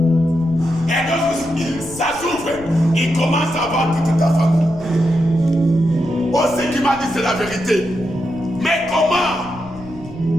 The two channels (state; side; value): noise; left; rumble, 18 dB below the sound